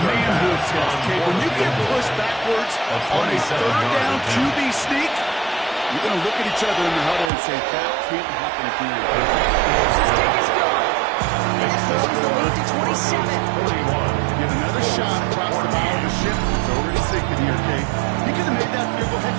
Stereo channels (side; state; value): left; drops out; at 7.3 s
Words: test, Kate. When you get pushed backwards on a 3rd down QB sneak, you're going to look at each other in the huddle and say, that can't happen again. This kick is gone. And that grows the lead to 27. 41. Get another shot across the bow of the ship. It's already sinking here, Kate. He could have made that field goal. Heck,